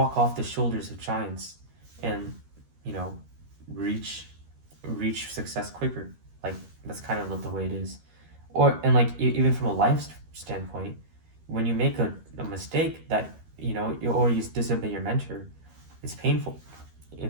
off the shoulders of giants and, you know, reach success quicker. Like, that's kind of the way it is. Or, and like, even from a life standpoint, when you make a mistake that, or you disobey your mentor, it's painful.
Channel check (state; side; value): late; left; 13 ms